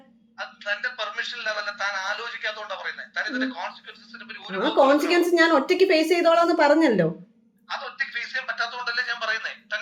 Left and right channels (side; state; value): both; identical; correlation 1.00